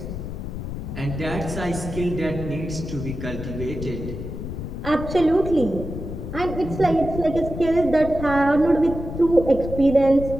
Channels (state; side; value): noise; left; rumble, 7 dB below the sound